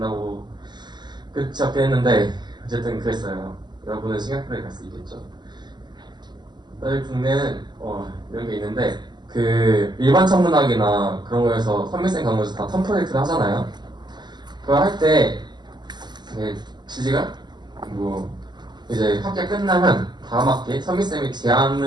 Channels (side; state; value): left; late; 0.21 ms